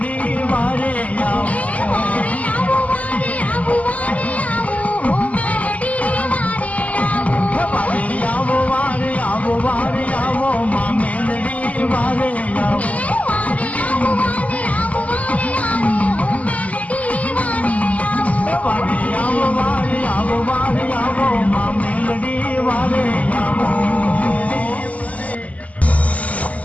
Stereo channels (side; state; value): right; late; 0.071 ms